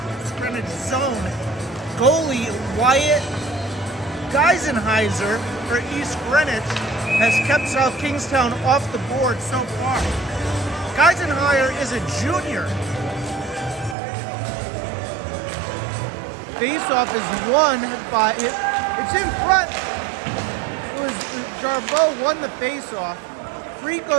zone. Goalie Wyatt Geisenheiser for East Greenwich has kept South Kingstown off the board so far. Geisenheiser is a junior. Face-off is won by, it's in front. It was Jarbeau won the face-off. Free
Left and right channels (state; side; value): drops out; left; at 14.0 s